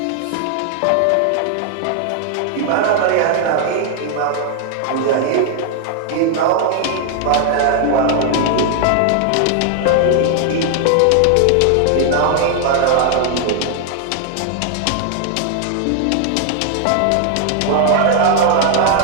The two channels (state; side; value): different; both; correlation 0.00